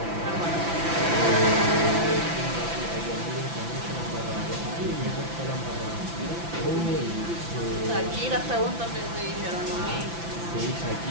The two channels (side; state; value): left; late; 5.9 ms